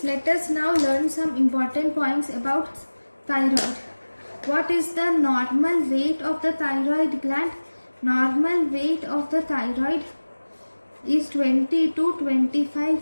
let us now learn some important points about thyroid. What is the normal weight of the thyroid gland? Normal weight of the thyroid is 20 to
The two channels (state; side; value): inverted; both; correlation -1.00